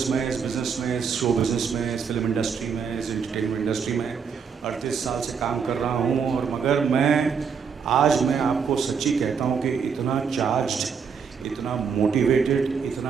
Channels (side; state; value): left; quieter; 6.3 dB